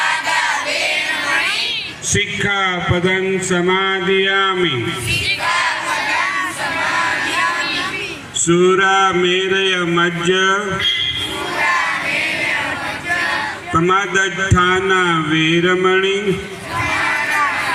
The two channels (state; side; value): identical; both; correlation 1.00